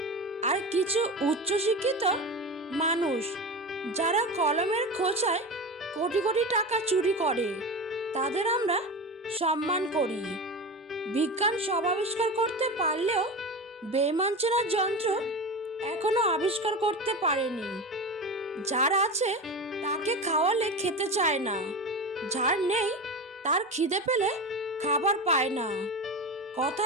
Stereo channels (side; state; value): both; normal; correlation 0.25